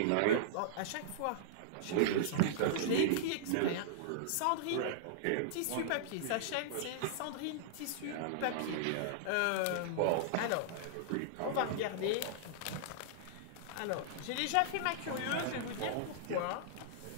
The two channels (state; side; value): different; both; correlation -0.02